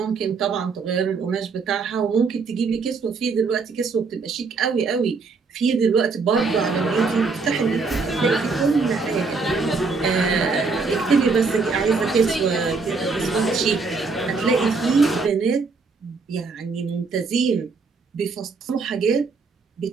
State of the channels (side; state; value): left; quieter; 4.5 dB